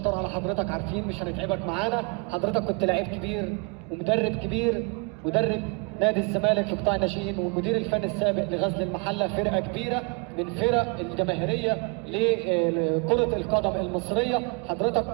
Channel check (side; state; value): left; quieter; 32.6 dB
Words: على حضرتك، عارفين مش هنتعبك معانا. حضرتك كنت لعيب كبير ومدرب كبير، مدرب نادي الزمالك في قطاع الناشئين، والمدير الفني السابق لغزل المحله، فرقه كبيره من فرق الجماهيريه لكره القدم المصريه.